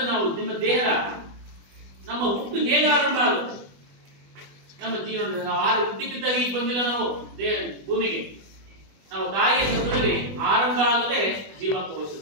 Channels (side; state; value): left; late; 20 ms